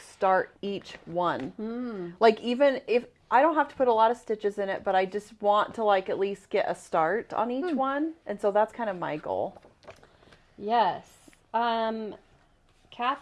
each one. Like even if I don't have to put a lot of stitches in it, but I just want to like at least get a start on each one, and so that's kind of my goal. Yes.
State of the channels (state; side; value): identical; both; correlation 1.00